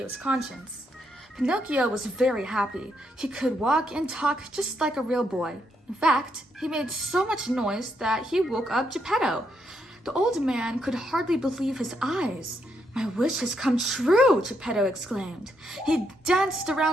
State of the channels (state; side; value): normal; both; correlation 0.78